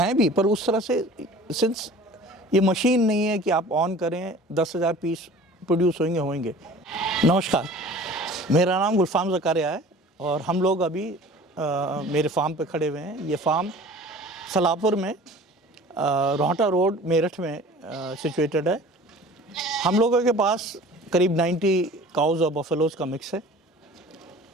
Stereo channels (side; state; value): both; normal; correlation 0.44